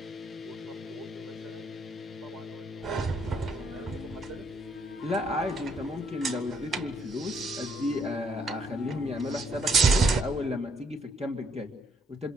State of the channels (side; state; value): both; normal; correlation 0.69